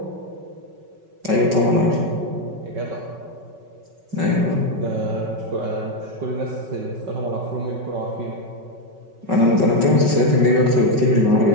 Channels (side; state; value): left; late; 5.3 ms